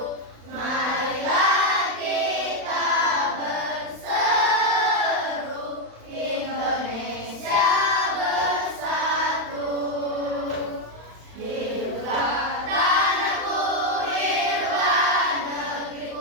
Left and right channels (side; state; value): left; late; 35 ms